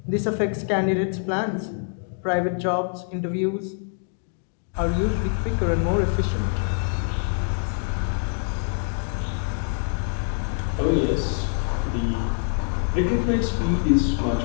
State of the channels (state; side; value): silent; right; 62 dB below the other